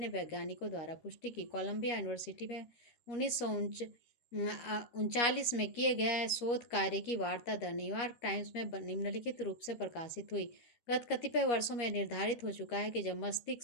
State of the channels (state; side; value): late; right; 13 ms